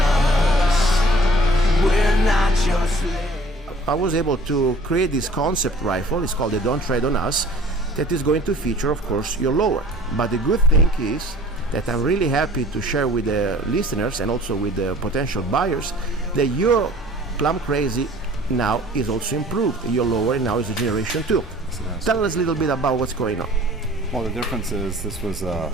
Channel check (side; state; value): both; normal; correlation 0.50